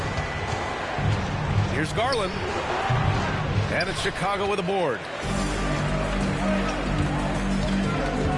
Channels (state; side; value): identical; both; correlation 1.00